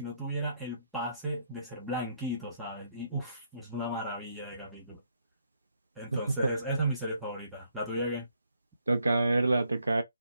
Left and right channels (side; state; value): both; inverted; correlation -0.72